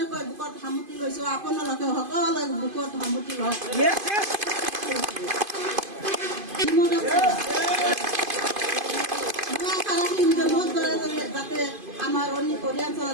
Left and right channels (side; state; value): left; late; 2.5 ms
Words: বুকত সামুতি লৈছোঁ, আপোনালোকে সকলোৱে বুকত সামুতি লওক। যাতে আমাৰ